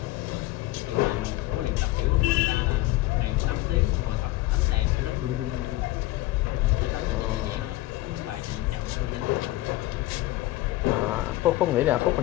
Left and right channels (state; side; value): quieter; right; 17.7 dB